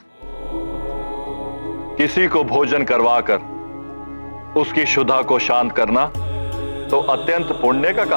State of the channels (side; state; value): both; inverted; correlation -1.00